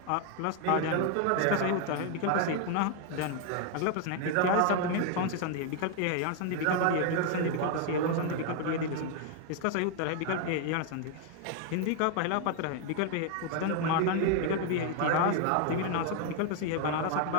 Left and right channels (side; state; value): both; different; correlation 0.01